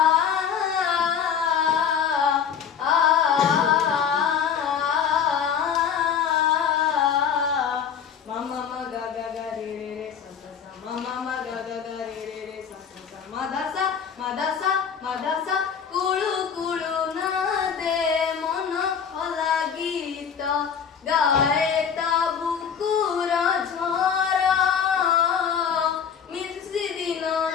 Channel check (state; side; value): quieter; right; 7.5 dB